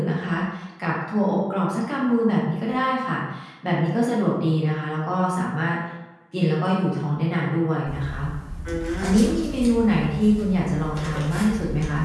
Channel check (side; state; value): both; identical; correlation 1.00